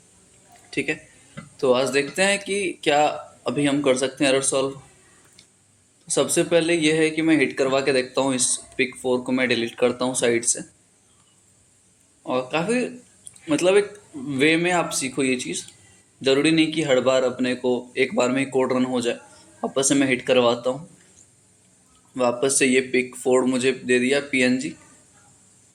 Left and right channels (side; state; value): both; identical; correlation 1.00